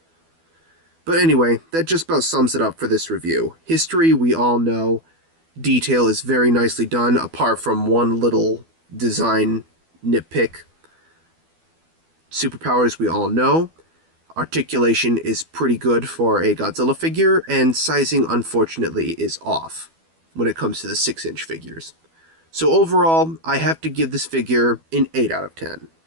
But anyway, that just about sums it up for this review. History, we all know. Detail is very nicely done, apart from one little design nitpick. Superpowers, we all know. Articulation is pretty good for a Godzilla figure, and sizing, unfortunately, is off when it comes to the 6-inch figures. So overall, I have to give this figure an 8 out of 10.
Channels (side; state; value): left; late; 12 ms